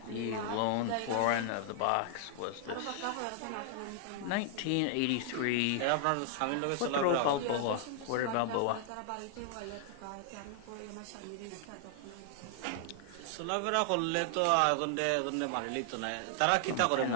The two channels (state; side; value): different; both; correlation 0.00